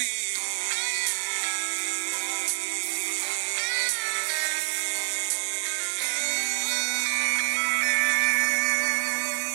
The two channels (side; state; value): left; silent; digital silence